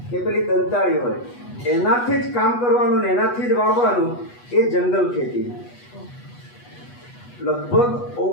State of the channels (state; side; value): late; right; 8.2 ms